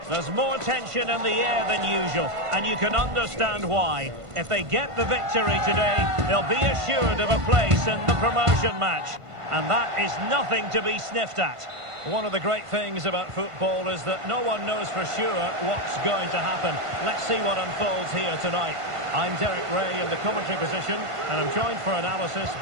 There's more tension in the air than usual, and you can understand why. If they get the victory today, they'll be assured of a place in the promotion match. And that is nothing to be sniffed at. One of the great things about football is that no one knows for sure what's going to happen. Let's see what unfolds here tonight. I'm Derek Ray in the commentary position, and I'm joined for analysis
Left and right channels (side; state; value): left; late; 1.5 ms